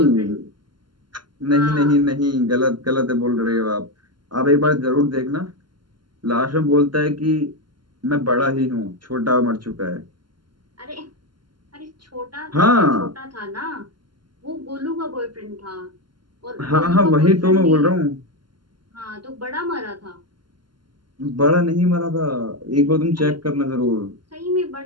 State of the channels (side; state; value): left; late; 0.72 ms